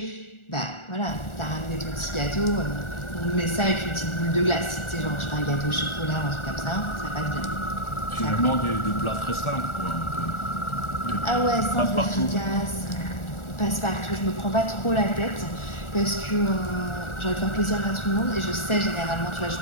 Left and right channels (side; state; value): right; late; 1.4 ms